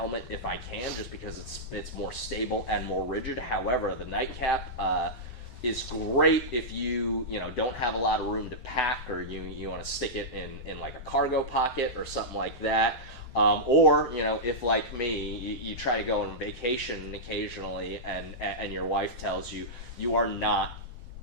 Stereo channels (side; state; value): right; late; 7.0 ms